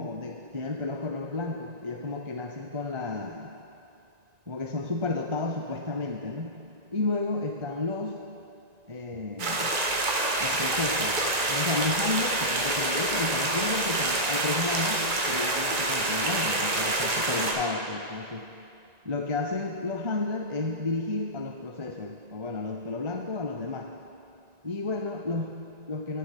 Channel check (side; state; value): left; late; 1.9 ms